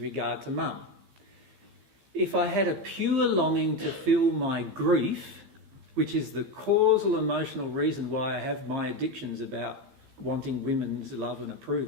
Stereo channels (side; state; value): left; late; 15 ms